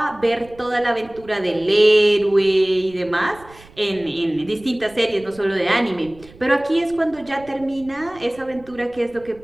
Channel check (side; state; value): right; noise; rumble, 23 dB below the sound